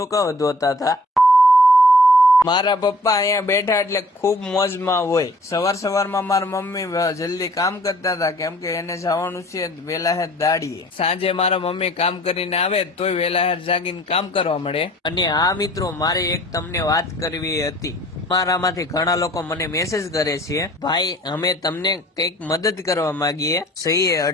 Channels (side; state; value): both; normal; correlation 0.52